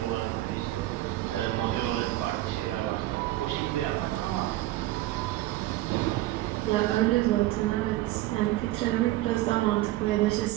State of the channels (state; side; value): quieter; left; 16.4 dB